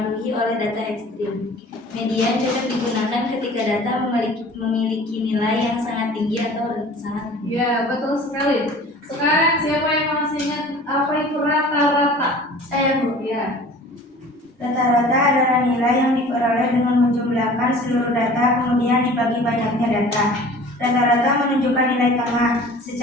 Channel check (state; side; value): normal; both; correlation 0.45